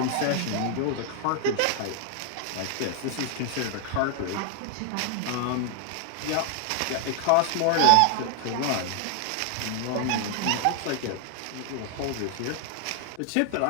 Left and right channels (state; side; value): different; both; correlation 0.00